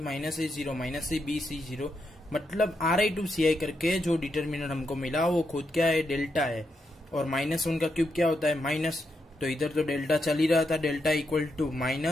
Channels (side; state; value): both; normal; correlation 0.83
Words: ए जीरो माइनस सी, बी सी जीरो, मतलब RI to CI करके जो डिटर्मिनेंट हमको मिला वो खुद क्या है, डेल्टा है। और माइनस वन का क्यूब क्या होता है, माइनस, तो इधर तो डेल्टा चल ही रहा था, डेल्टा इक्वल टू